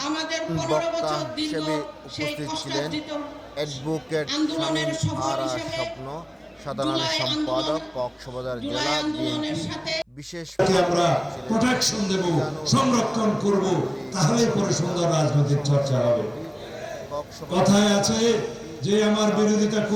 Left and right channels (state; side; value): identical; both; correlation 1.00